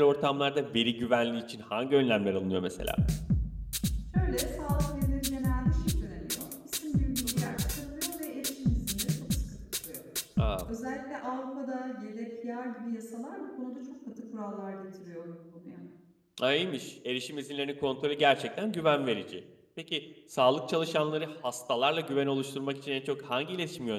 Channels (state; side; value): identical; both; correlation 1.00